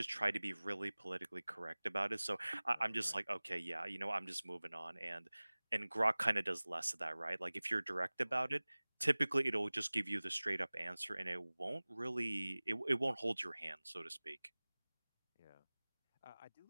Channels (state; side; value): inverted; both; correlation -1.00